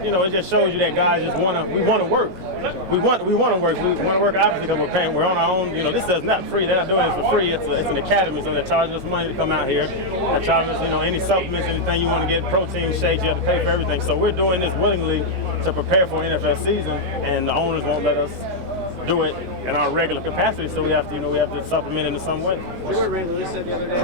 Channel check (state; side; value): late; left; 19 ms